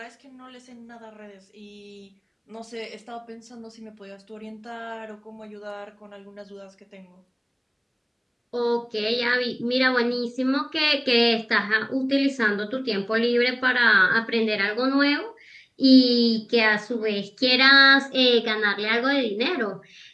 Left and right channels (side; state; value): both; identical; correlation 1.00